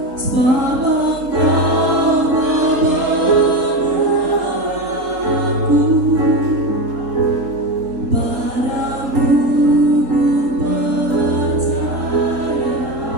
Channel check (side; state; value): left; late; 3.8 ms